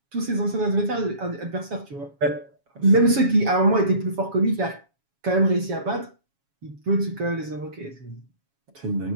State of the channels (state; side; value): late; left; 7.2 ms